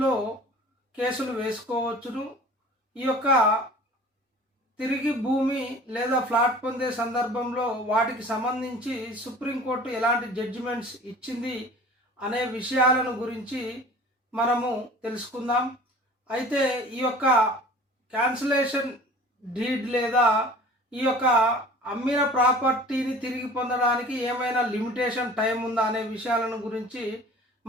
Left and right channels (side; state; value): both; normal; correlation 0.44